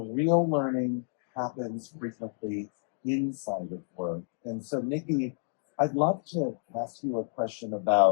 learning happens frequently inside of work. And so, Nikki, I'd love to ask you a question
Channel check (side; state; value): right; silent; digital silence